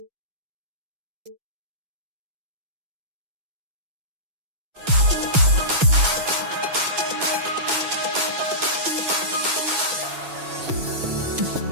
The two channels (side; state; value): left; late; 6.1 ms